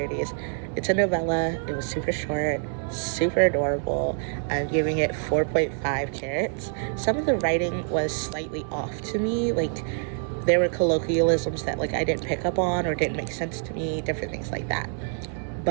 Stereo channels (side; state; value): left; silent; 60 dB below the other